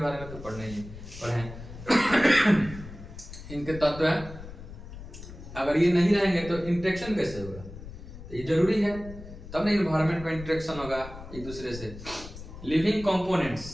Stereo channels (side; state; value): left; noise; rumble, 13 dB below the sound